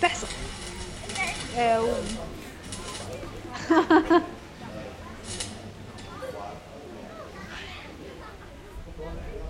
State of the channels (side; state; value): both; identical; correlation 1.00